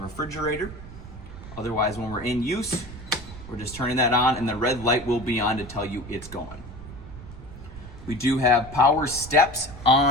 refrigerator. Otherwise, when we're in use, we're just turning that on, and the red light will be on to tell you it's going. We do have power steps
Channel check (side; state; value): right; noise; rumble, 14 dB below the sound